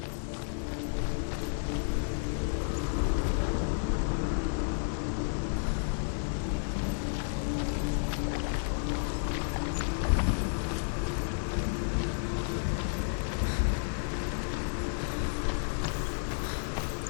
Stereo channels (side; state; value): right; silent; 57 dB below the other